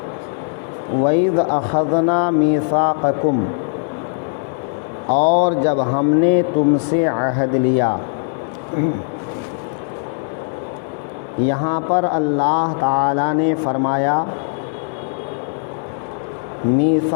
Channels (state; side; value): silent; right; digital silence